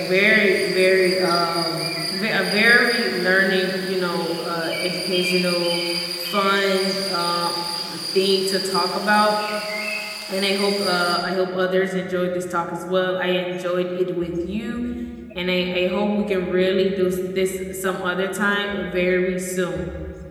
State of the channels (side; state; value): both; identical; correlation 1.00